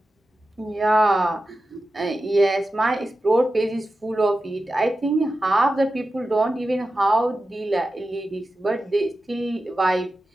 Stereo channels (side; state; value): both; normal; correlation 0.92